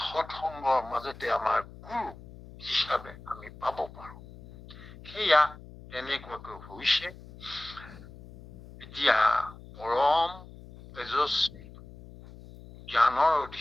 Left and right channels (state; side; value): noise; left; hum, 18 dB below the sound